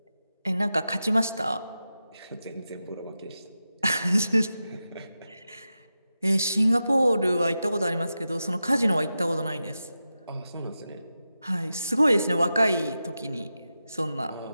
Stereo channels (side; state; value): both; inverted; correlation -0.91